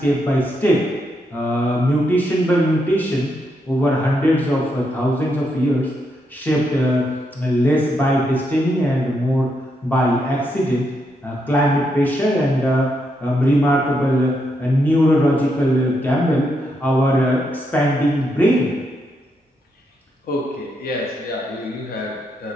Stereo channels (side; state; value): both; normal; correlation 0.80